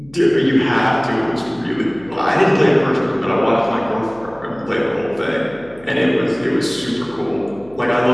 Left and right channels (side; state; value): left; noise; hum, 25 dB below the sound